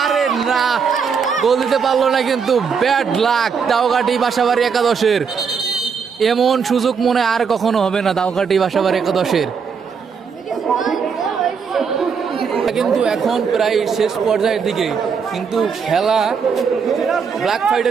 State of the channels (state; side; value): quieter; left; 6.1 dB